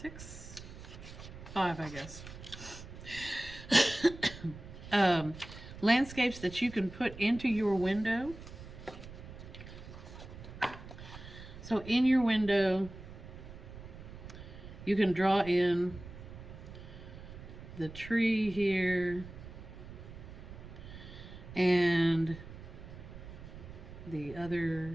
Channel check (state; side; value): noise; right; rumble, 14 dB below the sound